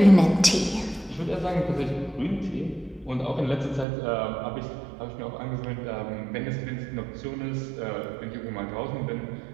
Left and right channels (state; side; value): drops out; left; at 3.9 s